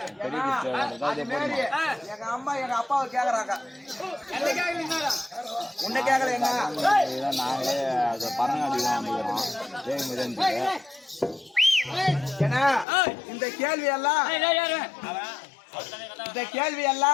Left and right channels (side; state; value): right; drops out; at 12.9 s